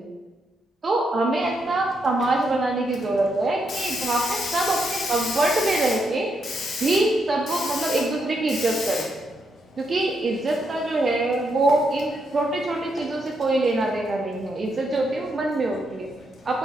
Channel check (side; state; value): both; normal; correlation 0.79